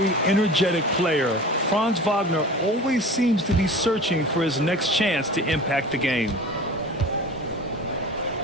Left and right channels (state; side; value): normal; both; correlation 0.38